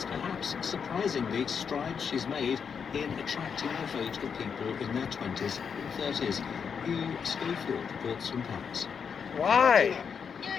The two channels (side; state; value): right; quieter; 6.6 dB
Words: perhaps surprisingly strides she's made in attracting a vote of people in their 20s and 30s. Hugh Schofield reports from Paris. Why?